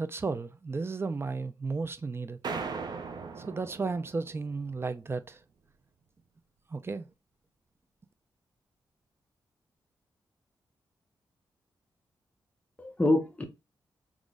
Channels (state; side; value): normal; both; correlation 0.84